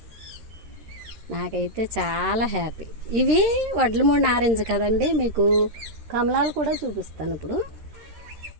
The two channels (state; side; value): late; left; 13 ms